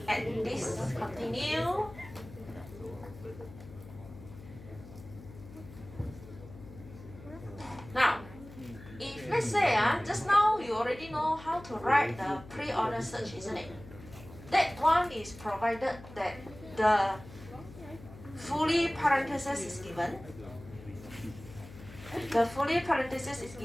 at this. Continue. Now, if let's say just now you already know how to write the pre-order search, isn't it? That one is provided that the fully parenthesis is given. The fully parenthesis is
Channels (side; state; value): left; noise; hum, 17 dB below the sound